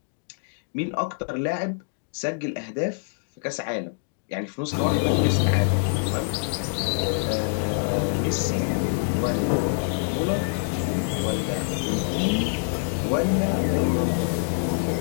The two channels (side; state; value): right; silent; digital silence